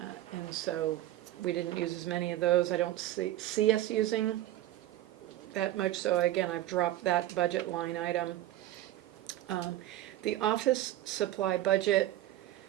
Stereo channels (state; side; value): quieter; left; 14.3 dB